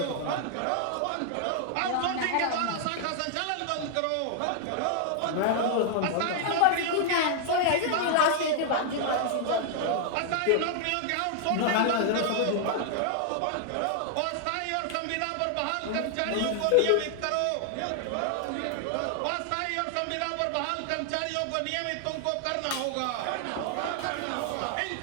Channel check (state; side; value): different; both; correlation 0.00